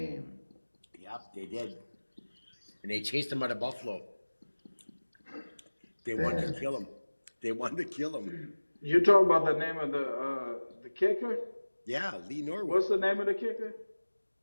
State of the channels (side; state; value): both; inverted; correlation -1.00